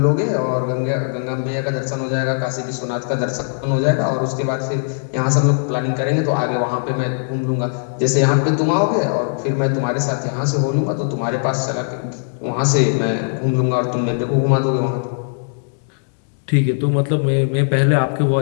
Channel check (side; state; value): right; silent; digital silence